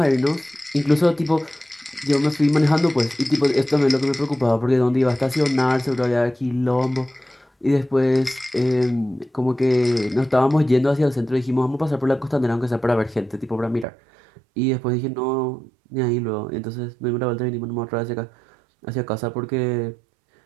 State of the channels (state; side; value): drops out; left; at 13.9 s